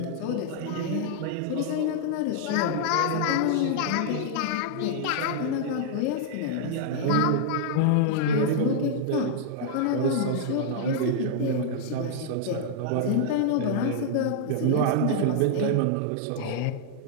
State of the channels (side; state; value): both; different; correlation -0.01